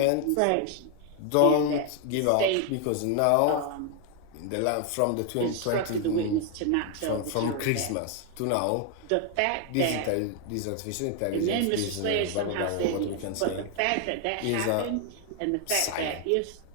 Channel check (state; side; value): different; both; correlation 0.00